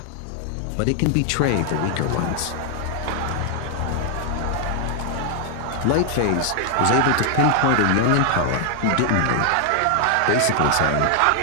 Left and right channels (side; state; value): both; different; correlation 0.00